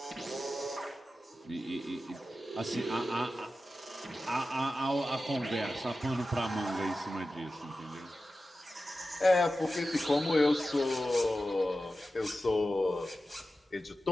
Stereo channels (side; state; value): both; normal; correlation 0.93